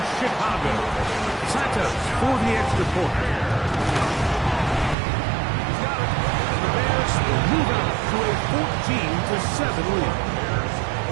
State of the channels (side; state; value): left; drops out; at 5.0 s